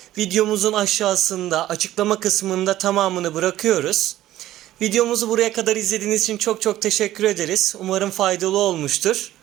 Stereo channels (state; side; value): quieter; left; 14.0 dB